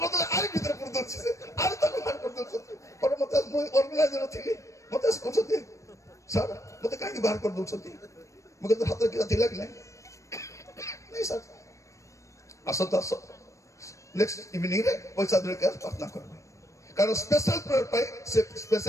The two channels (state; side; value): late; right; 0.15 ms